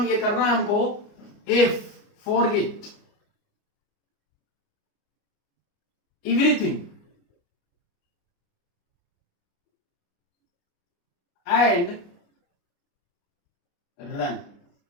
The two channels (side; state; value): right; late; 29 ms